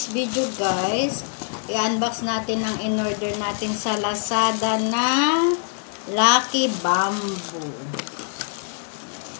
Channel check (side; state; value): right; silent; 63 dB below the other